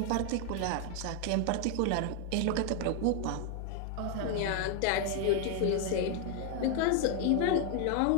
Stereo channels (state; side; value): different; both; correlation 0.00